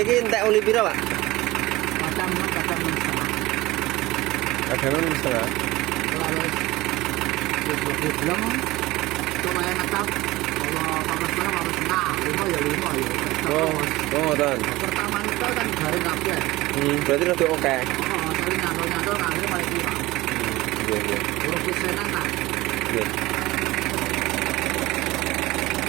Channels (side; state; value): left; quieter; 19.1 dB